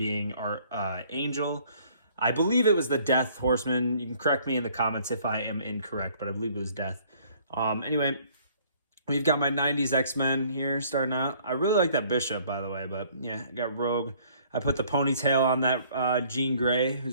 our Angel. I believe it was the Death Horseman. You can correct me in the comments if I am incorrect, but I believe it was Death. Anyway, we've got my 90s X-Men here starting out. I really like that Bishop, by the way, but yeah, I got Rogue. I put the ponytail on that Jean Grey,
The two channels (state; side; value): inverted; both; correlation -0.59